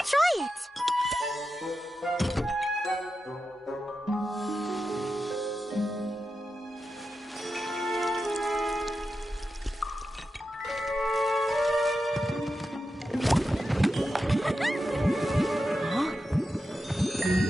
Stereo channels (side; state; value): both; normal; correlation 0.90